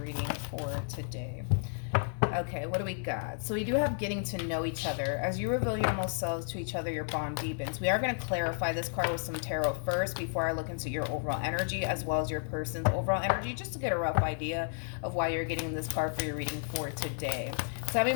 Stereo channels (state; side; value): silent; right; 56 dB below the other